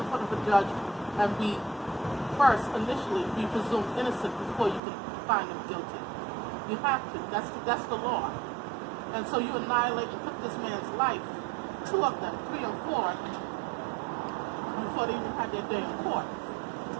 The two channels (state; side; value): drops out; left; at 4.8 s